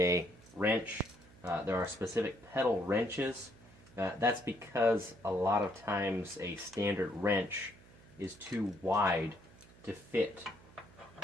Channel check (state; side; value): noise; right; hum, 23 dB below the sound